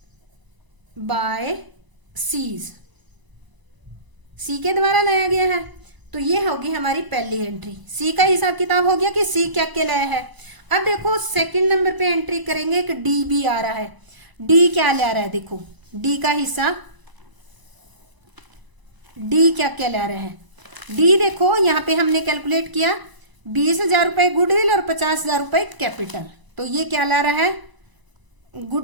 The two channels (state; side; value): late; left; 1.0 ms